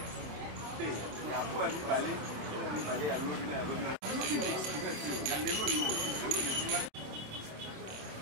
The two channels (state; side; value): late; left; 27 ms